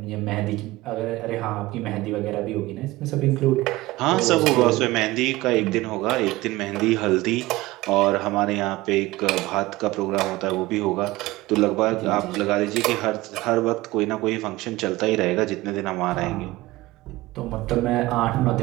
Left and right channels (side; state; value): left; quieter; 19.3 dB